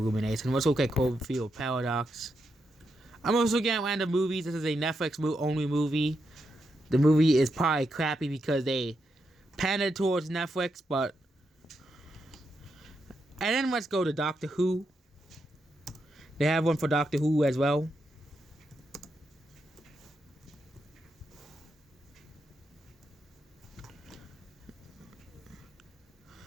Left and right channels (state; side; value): normal; both; correlation 0.83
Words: Let's look at Cloverfield Paradox. I'm also getting random movies. This is a Netflix only movie. The movie is probably crappy because they pandered towards Netflix, but... And then let's go to Doctor Who. They have one for Doctor Who as well.